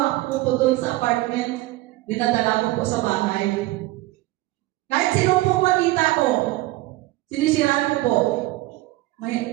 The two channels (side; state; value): left; quieter; 18.6 dB